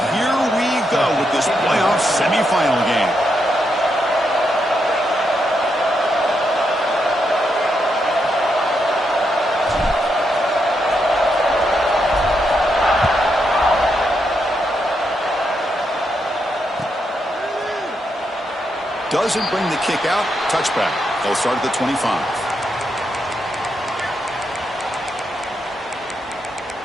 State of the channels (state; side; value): normal; both; correlation 0.81